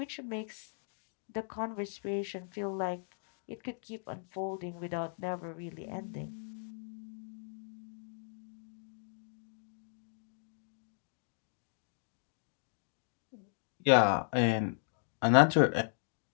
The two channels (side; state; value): right; silent; digital silence